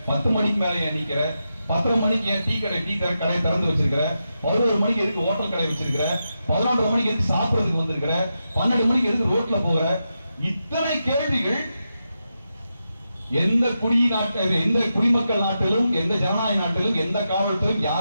10 மணிக்கு மேல ஏன் நிக்கிற, 10 மணிக்கு ஏன் டீ கடையை திறந்து வச்சிருக்கிற, 11 மணிக்கு எதுக்கு ஹோட்டல் கடை வச்சிருக்கிற, 11 மணிக்கு எதுக்கு சாப்பிடுறதுக்கு வந்திருக்கிற, 12 மணிக்கு எதுக்கு ரோட்ல போற, இத்தனை கேள்விகள் எந்த குடிமக்கள் நாட்டிலும், எந்த ஜனநாயக நாட்டிலும், எந்த காவல்துறையும்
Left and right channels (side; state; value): both; inverted; correlation -0.87